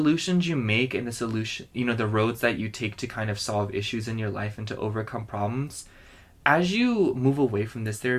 you make and the solution, you know, the roads that you take to kind of solve issues in your life and to overcome problems. As you move away from this, there are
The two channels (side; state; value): both; identical; correlation 1.00